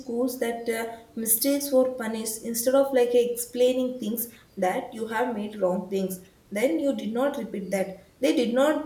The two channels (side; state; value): both; identical; correlation 1.00